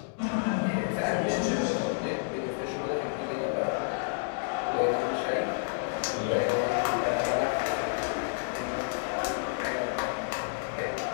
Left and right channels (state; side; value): silent; right; digital silence